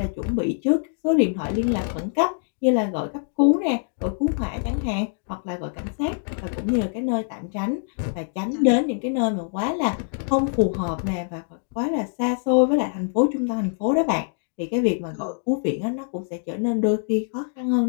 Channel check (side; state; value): right; silent; digital silence